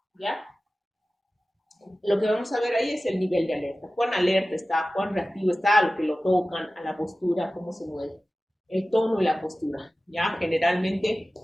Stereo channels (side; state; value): both; normal; correlation 0.96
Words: ¿ya? Lo que vamos a ver ahí es el nivel de alerta. Cuán alerta está, cuán reactivo está a lo que lo tocan, a la postura, cómo se mueve. El tono y la postura, ¿ya? Generalmente,